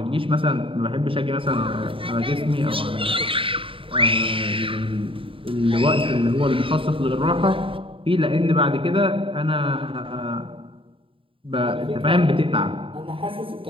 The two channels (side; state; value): left; late; 0.26 ms